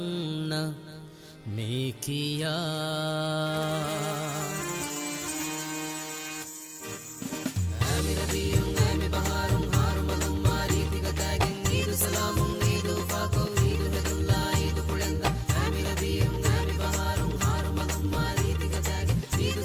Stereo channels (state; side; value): identical; both; correlation 1.00